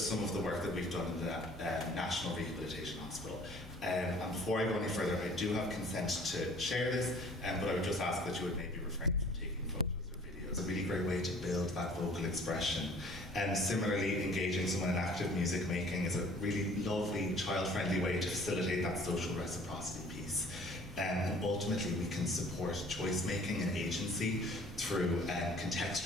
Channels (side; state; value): both; normal; correlation 0.52